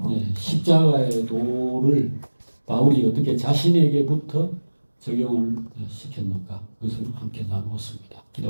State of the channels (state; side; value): inverted; both; correlation -1.00